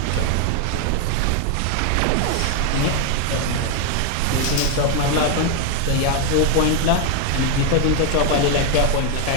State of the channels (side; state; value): both; different; correlation 0.01